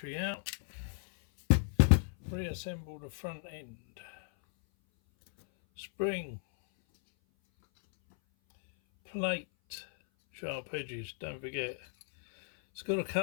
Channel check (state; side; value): silent; right; 55 dB below the other